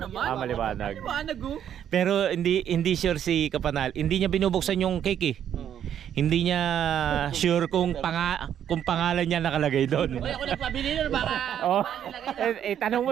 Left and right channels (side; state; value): left; quieter; 9.7 dB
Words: Ah, maliwanag. Liwanag oh. Pero hindi sure si Kapanal. Hindi niya binubuksan yung cake eh. Hindi niya sure kung pangalan niya nakalagay doon. Uy, ako nagpabili na baka Oh. Tanong mo